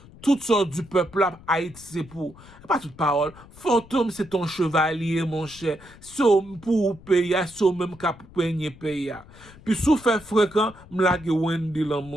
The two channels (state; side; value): noise; left; rumble, 21 dB below the sound